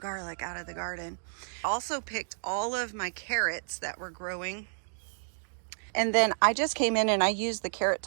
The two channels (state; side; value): silent; left; digital silence